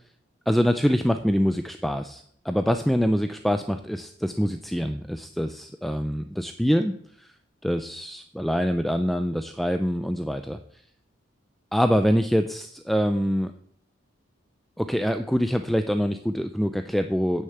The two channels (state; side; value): normal; both; correlation 0.96